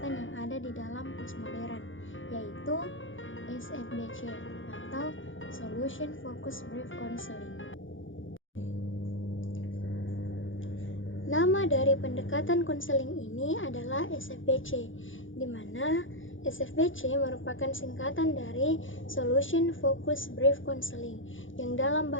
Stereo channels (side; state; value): right; late; 0.57 ms